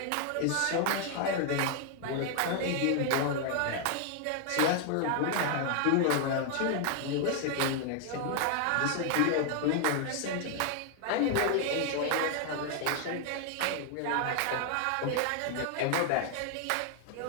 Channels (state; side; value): different; both; correlation 0.00